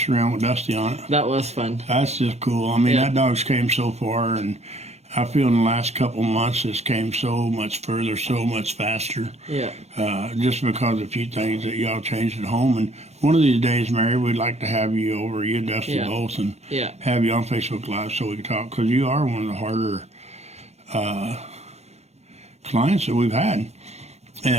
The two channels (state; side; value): late; left; 0.31 ms